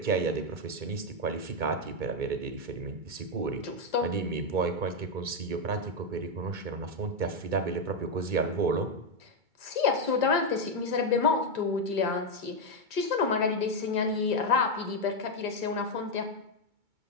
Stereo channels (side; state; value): left; late; 2.2 ms